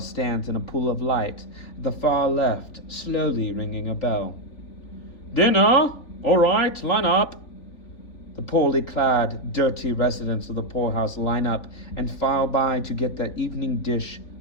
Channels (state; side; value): late; right; 3.5 ms